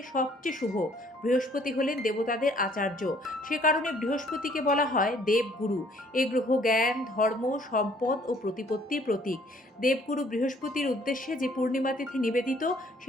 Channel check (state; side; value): normal; both; correlation 0.60